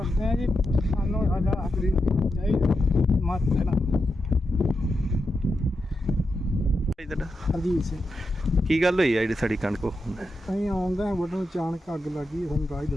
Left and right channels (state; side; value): normal; both; correlation 0.87